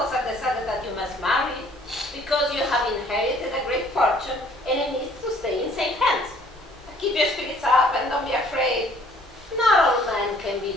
have decided that you must marry because you have inherited a great fortune and it needs to stay in safe hands. Keep your spirits up and don't be afraid. Not all men can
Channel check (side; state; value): both; normal; correlation 0.58